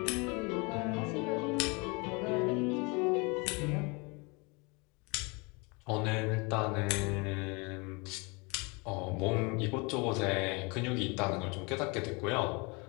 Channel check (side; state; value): right; quieter; 29.2 dB